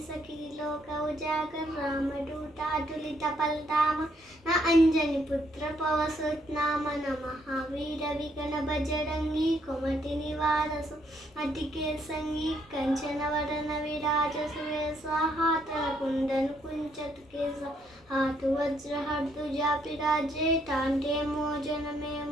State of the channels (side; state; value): both; normal; correlation 0.72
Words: सखी लोक उजागर रामदूतातुलित बलधाम न अंजनी पुत्र पवसुत नाम न महावीर विगण बजरंगी कुमति निवार अतिके संगी कंचन वरन विराज सुवेशा हाथ कुंदन कुंचत केसा हाथ वज्र हर्दुजा पिराजे टांटे मोजन में